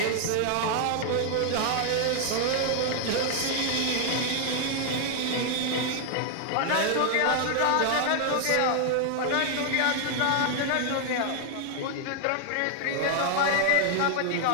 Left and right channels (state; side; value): different; both; correlation 0.00